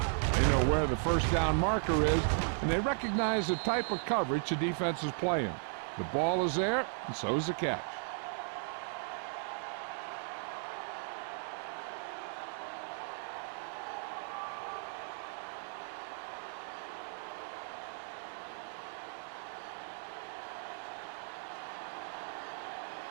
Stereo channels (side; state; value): left; silent; 54 dB below the other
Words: know where the first down marker is, and they recognize the type of coverage the defense is playing. The ball is there, and so is the catch.